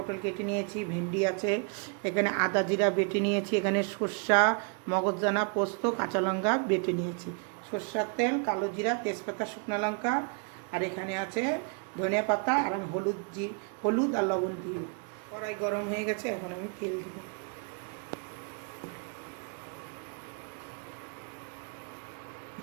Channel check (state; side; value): quieter; left; 38.2 dB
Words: কেটে নিয়েছি, ভেন্ডি আছে, এখানে আদা জিরা বেটে নিয়েছি, এখানে সর্ষা মগজদানা পোস্ত কাঁচা লঙ্কা বেটে নিয়েছি, সর্ষার তেল, কালো জিরা, তেজপাতা, শুকনো লঙ্কা, আর এখানে আছে ধনিয়া পাতা, আর আমি হলুদ আর লবণ দিই। কড়াই গরম হয়ে গেছে, এখন আমি তেল দেবো।